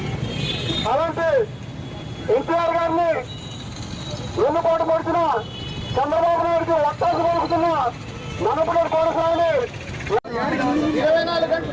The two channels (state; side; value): identical; both; correlation 1.00